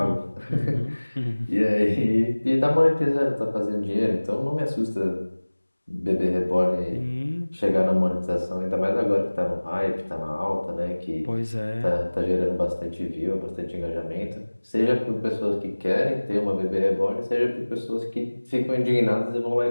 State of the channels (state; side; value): inverted; both; correlation -1.00